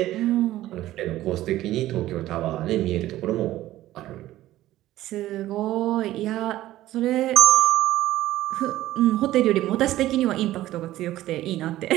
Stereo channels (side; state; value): left; quieter; 15.0 dB